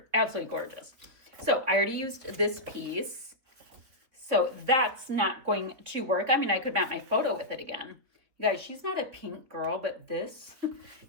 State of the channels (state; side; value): late; left; 4.0 ms